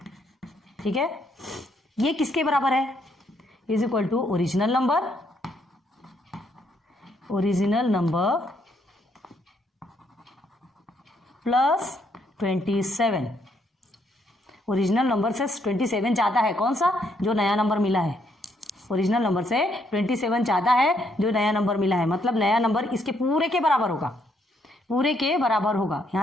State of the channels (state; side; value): normal; both; correlation 0.72